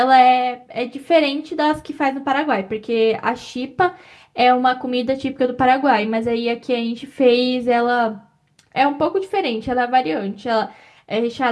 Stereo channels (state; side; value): identical; both; correlation 1.00